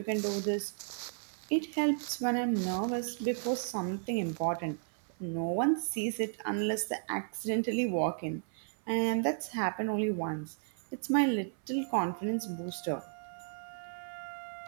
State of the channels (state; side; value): silent; left; 55 dB below the other